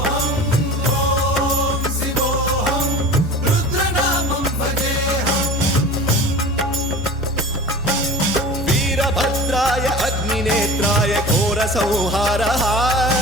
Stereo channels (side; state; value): both; normal; correlation 0.37